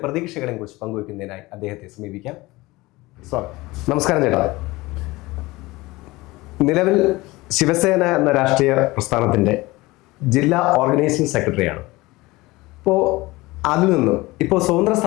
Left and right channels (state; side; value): quieter; right; 20.9 dB